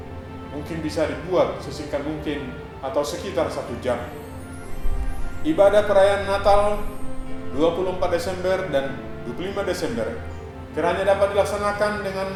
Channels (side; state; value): both; identical; correlation 1.00